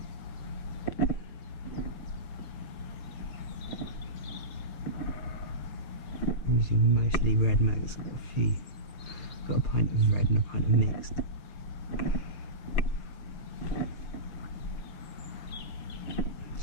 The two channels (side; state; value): right; late; 6.5 ms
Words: I'm using mostly red mags, got a pint of red and a pint of mixed.